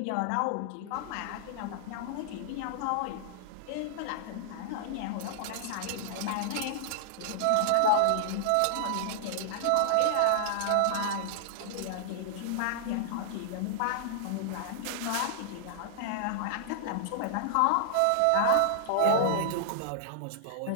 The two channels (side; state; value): both; different; correlation -0.01